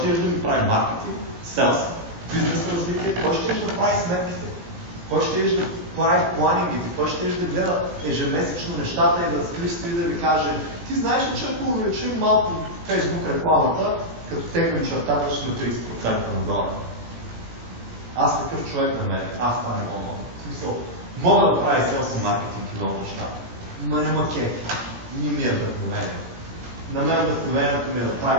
да ми прави маркетинг, селс, бизнес развитие, кой ще да прави сметките? Кой ще да прави планингите? Кой ще да гледа ежемесечно нещата и да стои да ви каже: ти знаеш ли, че ако увеличим малко Facebook рекламата, като теглим чертата, ще на 30% нагоре? Аз такъв човек на мен, аз това не мога. В смисъл, мога да прави селс и маркетинг и много неща. Ма не макети. Не ми е вдъхновение. На мен вдъхновението ми е да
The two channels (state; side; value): late; left; 17 ms